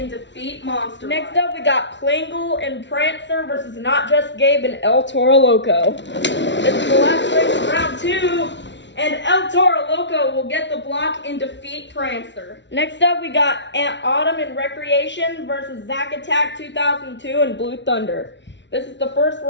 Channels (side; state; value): right; late; 0.52 ms